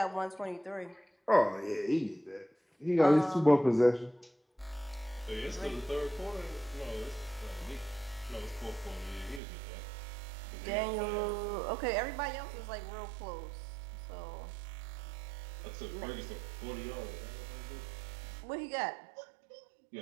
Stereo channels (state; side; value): drops out; left; at 9.4 s